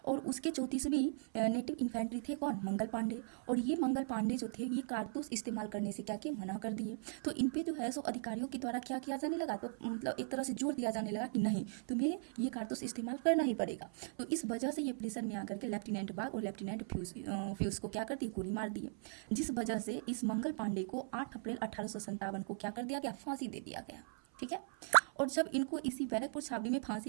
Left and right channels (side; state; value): left; silent; 52 dB below the other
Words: और उसके 34वीं नेटिव इन्फेंट्री थे कौन? मंगल पांडे। और ये मंगल पांडे जो थे ये कारतूस इस्तेमाल करने से क्या किए? मना कर दिए। तो इन पे जो है सो अधिकारियों के द्वारा क्या किया जाने लगा? तो मतलब एक तरह से जोर दिया जाने लगा कि नहीं, तुम्हें ये कारतूस इस्तेमाल करना ही पड़ेगा। तो इस वजह से ये प्रेशर में आकर के लेफ्टिनेंट बाग और लेफ्टिनेंट फ्यूज को क्या कर दिए? गोली मार दिए, जिस वजह से इस मंगल पांडे को 8 अप्रैल 1857 को क्या कर दिया गया? फांसी दे दिया गया। ठीक है, और जब इनको इसी बैरकपुर छावनी में